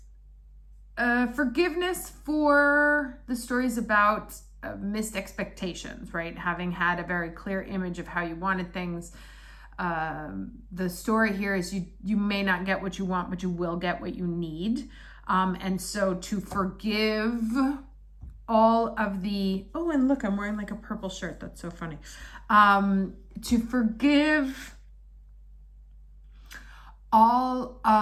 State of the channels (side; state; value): both; identical; correlation 1.00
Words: Forgiveness for the stories about missed expectations, right? Having had a very clear image of how you wanted things. The story here is you may not get what you want, but you will get what you need. And so to forgive all of the, oh, and look, I'm wearing like a purple shirt. That's so funny. To forgive all